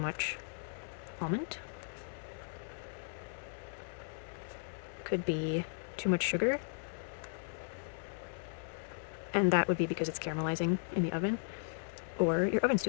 almond. Could be too much sugar, and that would be because it's caramelizing in the oven, or your oven's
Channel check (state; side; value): silent; right; 53 dB below the other